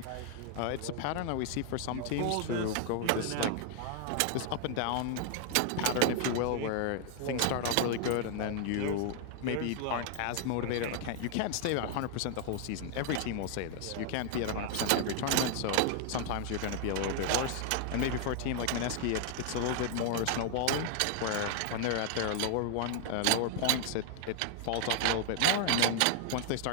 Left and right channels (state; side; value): different; both; correlation 0.00